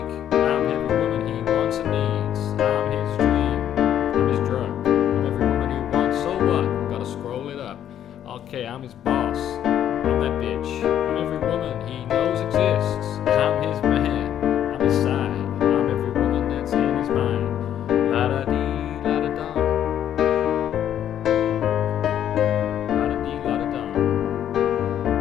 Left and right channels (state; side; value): quieter; right; 10.4 dB